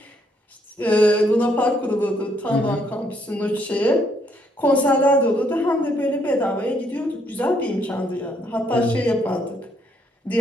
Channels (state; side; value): normal; both; correlation 0.71